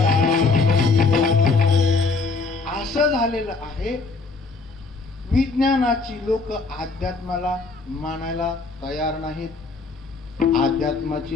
असं झालेलं आहे. विज्ञानाची लोक अध्यात्माला मानायला तयार नाहीत,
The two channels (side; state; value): right; quieter; 4.0 dB